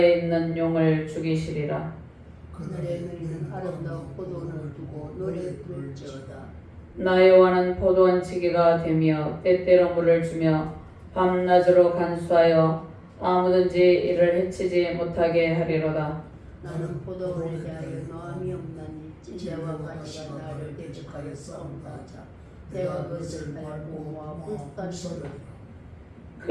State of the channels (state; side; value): identical; both; correlation 1.00